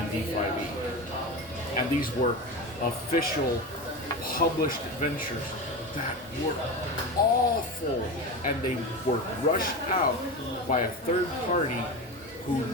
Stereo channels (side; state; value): both; normal; correlation 0.24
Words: 5e. And these were official published adventures that were awful, and they were rushed out by a third party who